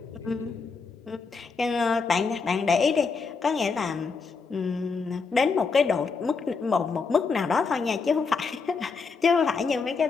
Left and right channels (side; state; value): right; quieter; 4.8 dB